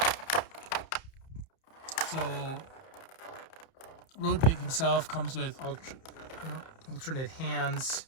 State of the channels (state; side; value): late; right; 31 ms